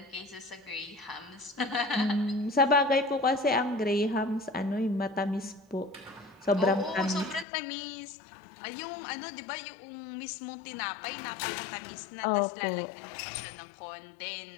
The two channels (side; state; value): right; drops out; at 7.5 s